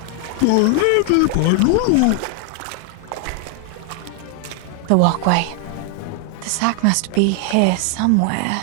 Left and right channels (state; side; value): different; both; correlation 0.00